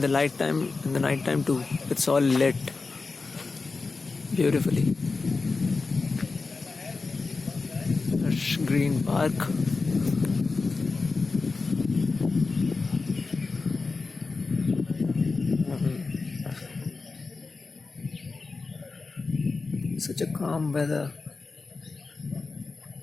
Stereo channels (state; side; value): quieter; right; 4.1 dB